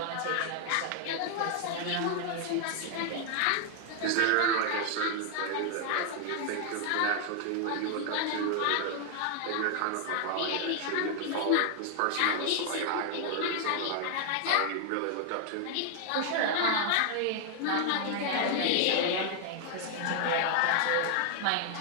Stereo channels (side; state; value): both; different; correlation 0.00